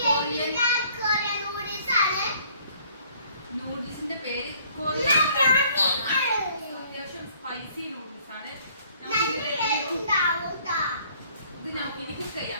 നൂഡിൽസിന്റെ പേര് കൊറിയൻ. അത്യാവശ്യം സ്പൈസി നൂഡിൽസ് ആണ്. ഇത് നമുക്ക് ഇനി കുക്ക്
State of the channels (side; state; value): both; inverted; correlation -0.59